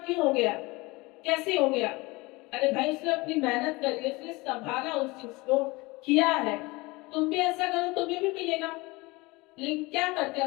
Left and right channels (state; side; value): quieter; right; 23.5 dB